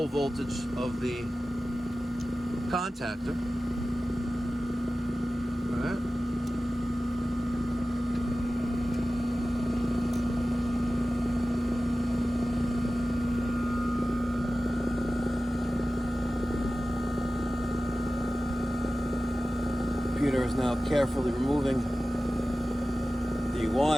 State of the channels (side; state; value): both; normal; correlation 0.95